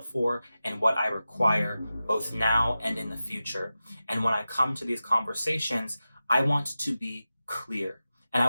and what I require both now and in the future. And when I come to these conversations, I want to be clear and I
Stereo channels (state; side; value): inverted; both; correlation -0.94